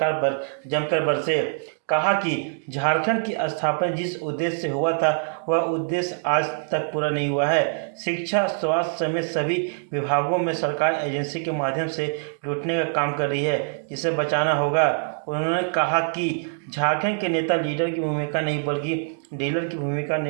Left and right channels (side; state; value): left; silent; digital silence